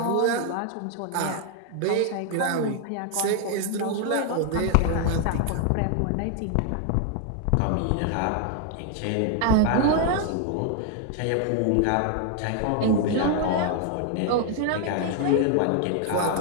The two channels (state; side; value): different; both; correlation 0.00